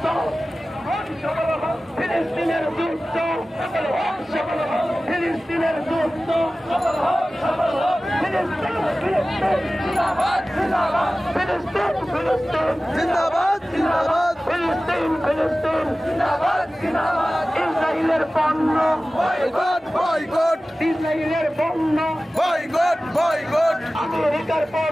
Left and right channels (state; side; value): normal; both; correlation 0.96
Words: ফিলিস্তিনের যুদ্ধ, ফিলিস্তিনের যুদ্ধ, জিন্দাবাদ, জিন্দাবাদ, ফিলিস্তিন, ফিলিস্তিন, ইসরায়েলের পণ্য বয়কট, বয়কট, ইসরায়েলের পণ্য বয়কট, বয়কট, আমেরিকার